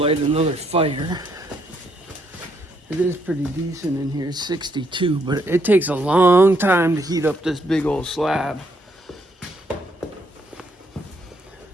another fire. It is pretty decent in here, it's 62, but it takes a long time to heat up this big old slab.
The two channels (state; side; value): normal; both; correlation 0.73